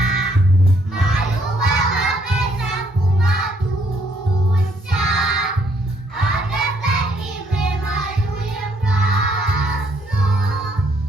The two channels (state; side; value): normal; both; correlation 0.68